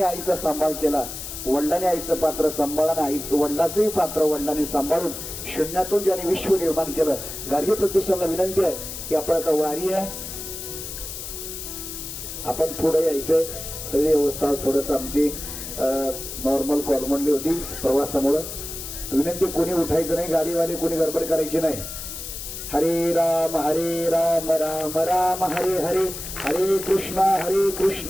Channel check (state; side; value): noise; left; hiss, 8 dB below the sound